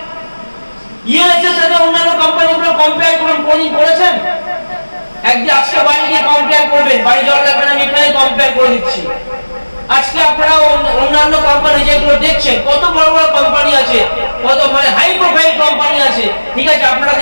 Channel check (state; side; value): inverted; both; correlation -1.00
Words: ইএলএসএর সাথে অন্যান্য কোম্পানিগুলো কম্পেয়ার করুন, কোনদিন করেছেন? একদিন আজকে বাড়ি গিয়ে কম্পেয়ার করবেন, বাড়ি যাওয়ার লাগবে না, আমি এখানে কম্পেয়ার করে দিচ্ছি। আজকে আপনারা অন্যান্য কোম্পানি যেগুলো দেখছেন, কত বড় বড় কোম্পানি আছে, কত মানে হাই প্রোফাইল কোম্পানি আছে, ঠিক আছে আপনারা